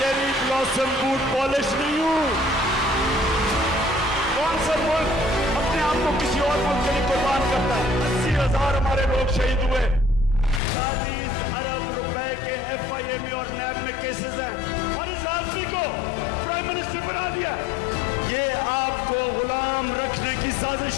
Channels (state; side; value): drops out; right; at 10.6 s